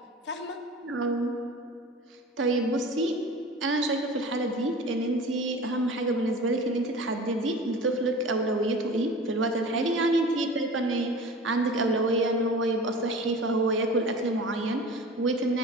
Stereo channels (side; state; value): both; normal; correlation 0.38